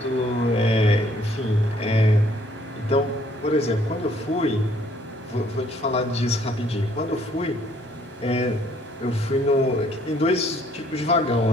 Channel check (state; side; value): normal; both; correlation 0.63